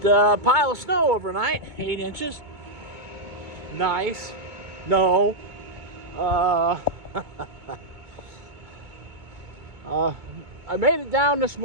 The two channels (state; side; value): late; left; 2.2 ms